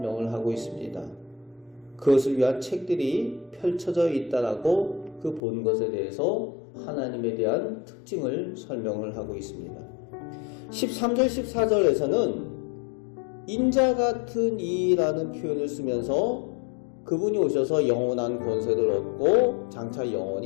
하고 있습니다. 그것을 위한 책들이 펼쳐져 있다라고 그 본 것에 대해서 하나님에 대한 특징을 설명을 하고 있습니다. 13절 14절에서는 인자 같은 이라는 표현을 쓰면서 그분이 오셔서 영원한 권세를 얻고 장차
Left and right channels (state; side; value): drops out; right; at 5.4 s